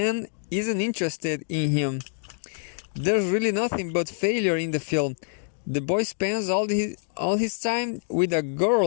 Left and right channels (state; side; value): silent; right; digital silence